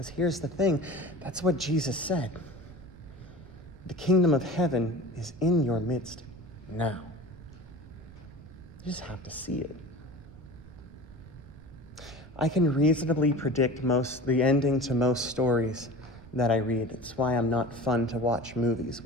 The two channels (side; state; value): right; noise; rumble, 19 dB below the sound